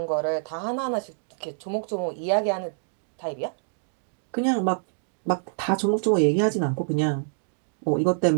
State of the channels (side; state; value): left; silent; digital silence